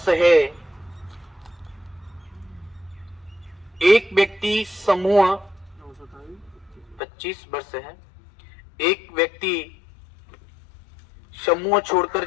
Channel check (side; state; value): right; drops out; at 7.0 s